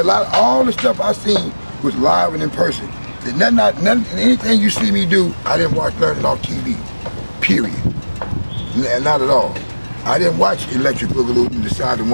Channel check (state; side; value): inverted; both; correlation -1.00